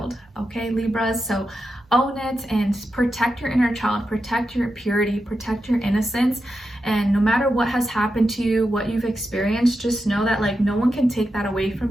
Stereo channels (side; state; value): both; normal; correlation 0.88